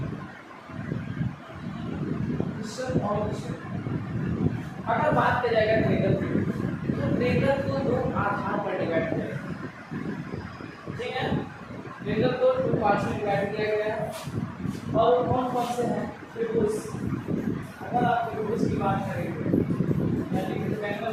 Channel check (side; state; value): both; identical; correlation 1.00